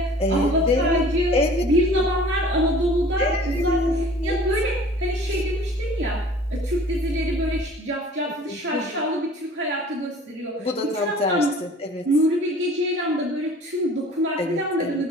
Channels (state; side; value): normal; both; correlation 0.48